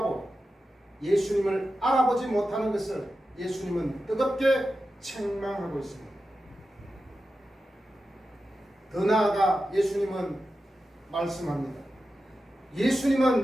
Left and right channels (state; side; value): normal; both; correlation 0.91